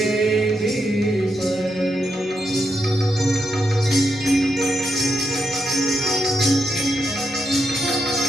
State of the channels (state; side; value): normal; both; correlation 0.83